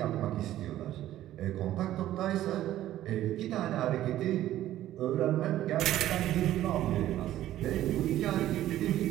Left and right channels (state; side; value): quieter; left; 13.4 dB